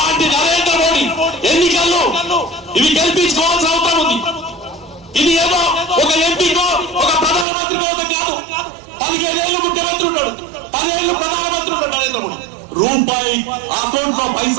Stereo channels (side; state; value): left; drops out; at 7.5 s